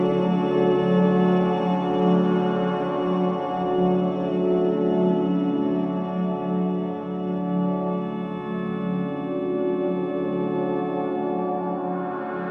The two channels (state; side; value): identical; both; correlation 1.00